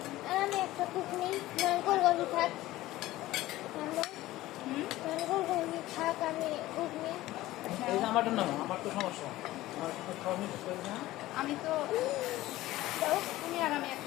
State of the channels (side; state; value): right; quieter; 16.6 dB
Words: আমি একটা কুকনি নারকল গলি থাক নারকল গলি থাক আমি কুকনি আমারটা না আমার তো সমস্যা আমার তো খাওয়া মিস করি না আমি তো দাও তুমি আর আমি